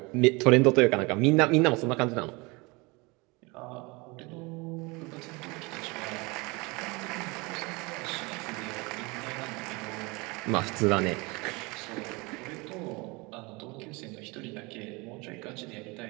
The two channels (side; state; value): left; quieter; 26.1 dB